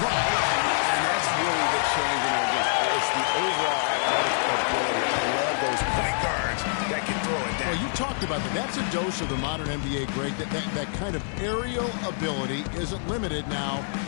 And that's really the change in our game. It's the overall athletic ability. I love those point guards that can throw it down. Well, you talked about that. That's a dose of the modern NBA, Greg. That kind of aerial ability isn't limited now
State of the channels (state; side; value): silent; right; digital silence